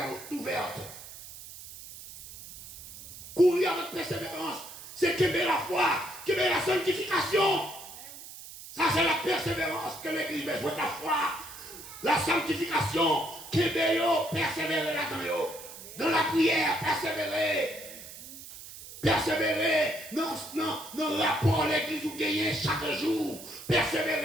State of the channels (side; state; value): right; noise; hiss, 14 dB below the sound